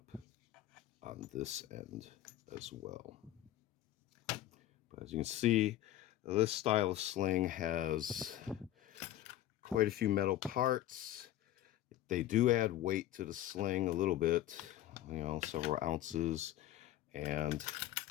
on this end as well. But as you can see, this style of sling has quite a few metal parts. They do add weight to the sling a little bit, several ounces, and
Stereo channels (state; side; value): quieter; right; 13.5 dB